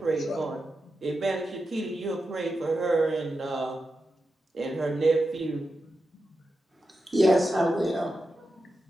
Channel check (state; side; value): normal; both; correlation 0.90